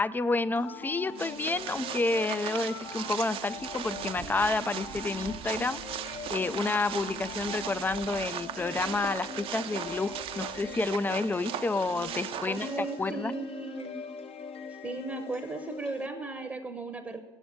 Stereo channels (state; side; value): normal; both; correlation 0.68